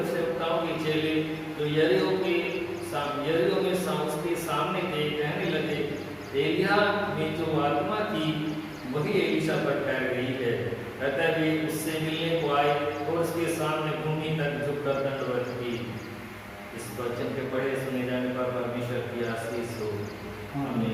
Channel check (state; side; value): identical; both; correlation 1.00